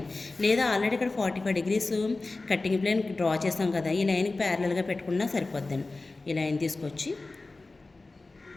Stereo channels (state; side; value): quieter; right; 3.4 dB